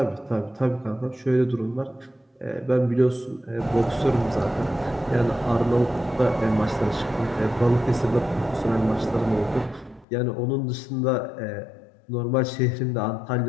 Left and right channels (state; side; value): drops out; right; at 10.1 s